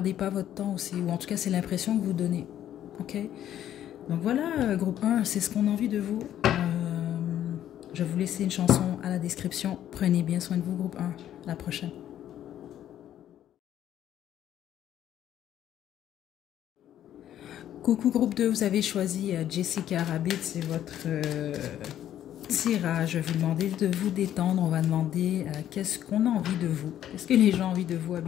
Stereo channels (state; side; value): quieter; right; 11.3 dB